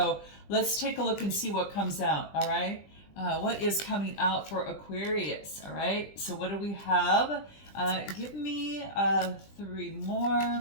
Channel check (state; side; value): late; right; 20 ms